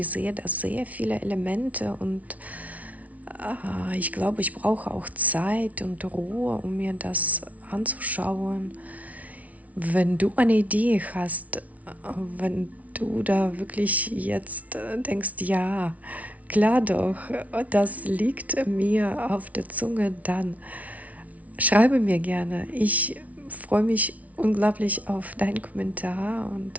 sehe da sehr viele Elemente und ich glaube, ich brauche auch Zeit und Ruhe, um mir das anzuschauen. Wenn du eine Idee hast, wenn du da wirklich jetzt denkst, ja, klar doch, das liegt mir auf der Zunge, dann schreibe mir gerne. Ich freue mich unglaublich auf deinen Kommentar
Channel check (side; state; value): left; late; 0.069 ms